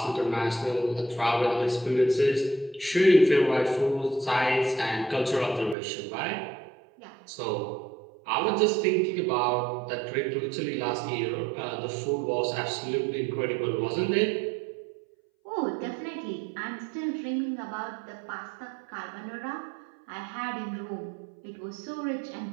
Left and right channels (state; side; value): drops out; left; at 5.8 s